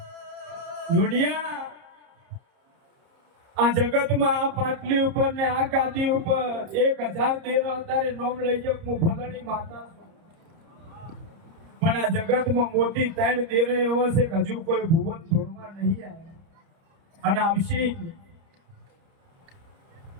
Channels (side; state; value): left; late; 30 ms